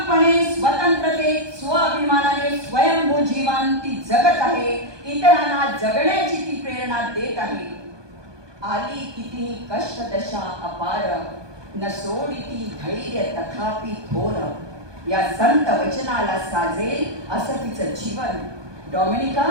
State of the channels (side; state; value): left; late; 1.2 ms